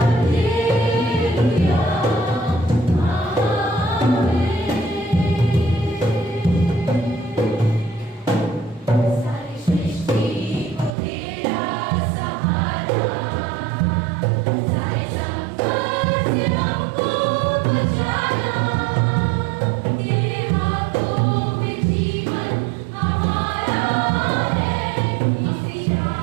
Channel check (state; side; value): drops out; left; at 10.9 s